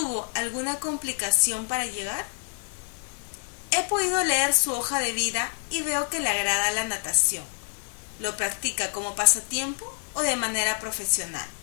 alguna complicación para llegar? He podido leer su hoja de vida y veo que le agrada la natación. ¿Lo practica como pasatiempo o de manera profesional?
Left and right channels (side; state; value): right; silent; 57 dB below the other